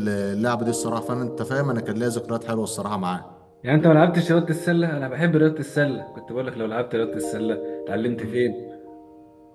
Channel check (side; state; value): both; identical; correlation 1.00